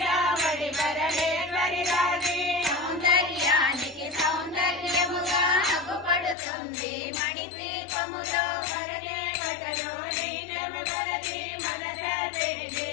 పరమేశ్వరి రాజి సౌందర్యానికి సౌందర్యముగా అగుపడుతుంది మణిద్వీపములో ధరణి గటలో నీనెవరది మనస తెలిసి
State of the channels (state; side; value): drops out; right; at 6.4 s